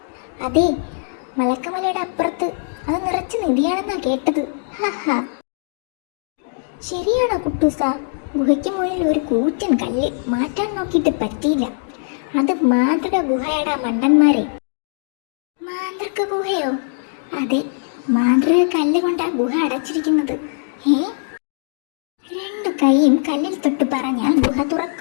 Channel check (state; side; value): silent; right; digital silence